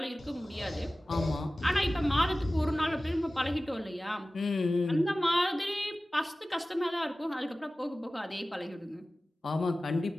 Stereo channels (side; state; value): both; normal; correlation 0.97